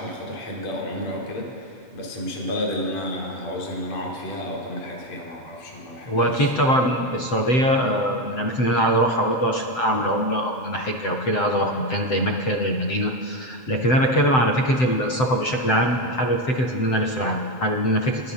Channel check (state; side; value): late; right; 7.8 ms